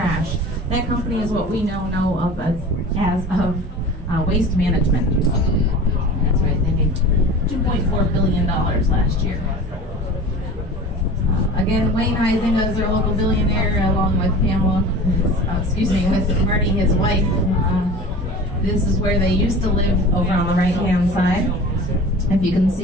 That company is what we know of as waste management. That's right, they made $2.4 billion last year. Again, Wayne Heisinger is our local billionaire, along with Pamela, with Marty, his wife. This is where they used to live over on the right-hand side. If you can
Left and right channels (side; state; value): both; normal; correlation 0.38